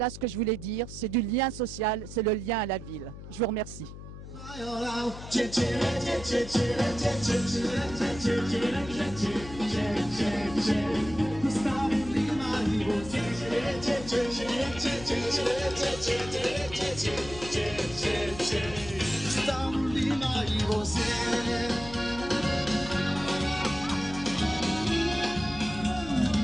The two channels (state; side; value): noise; left; hum, 13 dB below the sound